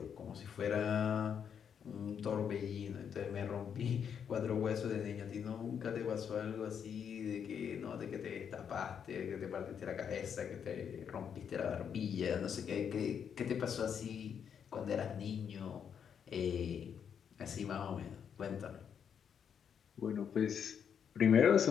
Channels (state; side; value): quieter; right; 7.7 dB